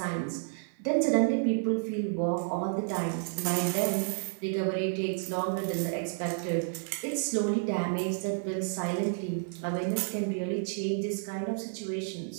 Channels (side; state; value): left; silent; 57 dB below the other